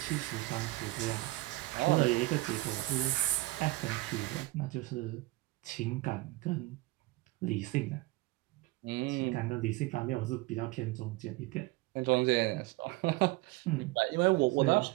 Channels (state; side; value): quieter; left; 20.5 dB